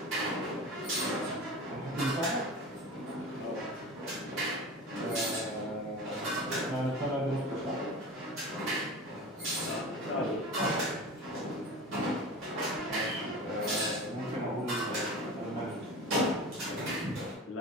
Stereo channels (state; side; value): normal; both; correlation 0.33